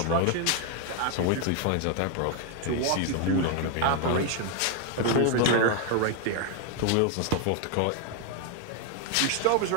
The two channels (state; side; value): different; both; correlation 0.00